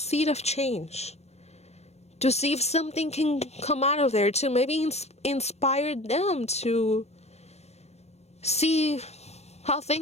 of change, to see if something can come out of there, to maybe inspire them to see how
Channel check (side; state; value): right; late; 0.31 ms